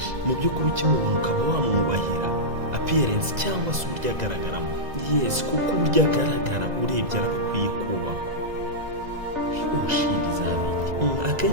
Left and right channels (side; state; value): left; late; 2.0 ms